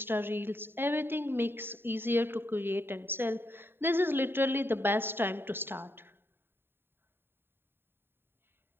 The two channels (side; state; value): left; late; 0.11 ms